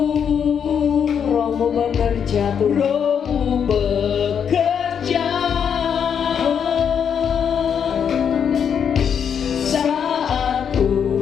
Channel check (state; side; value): quieter; right; 7.7 dB